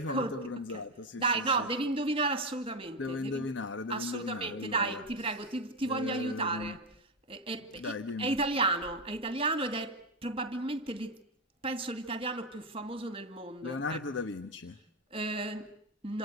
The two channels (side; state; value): both; normal; correlation 0.10